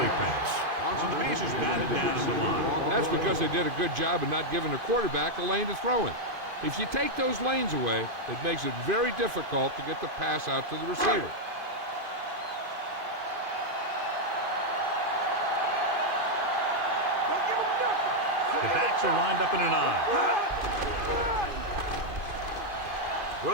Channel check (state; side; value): late; left; 2.5 ms